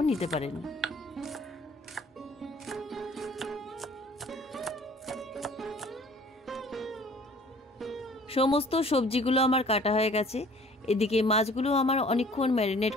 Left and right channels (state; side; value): normal; both; correlation 0.52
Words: নিতে পারেন। সমস্ত সবজিগুলো আমার কাটা হয়ে গেছে। এদিকে মাছগুলো আমার অনেকক্ষণ ম্যারিনেট